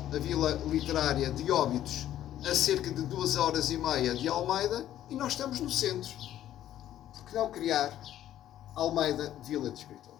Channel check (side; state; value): right; quieter; 12.1 dB